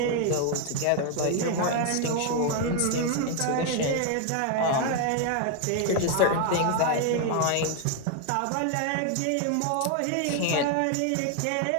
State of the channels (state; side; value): different; both; correlation 0.00